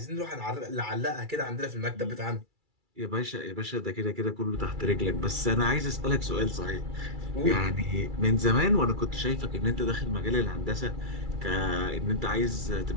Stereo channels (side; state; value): left; late; 2.3 ms